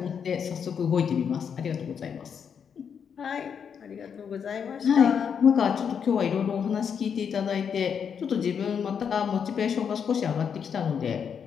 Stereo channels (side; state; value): right; quieter; 7.2 dB